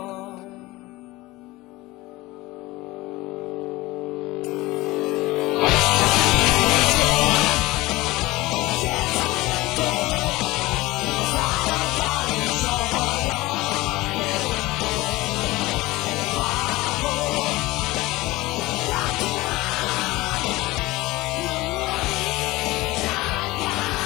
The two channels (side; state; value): right; quieter; 20.0 dB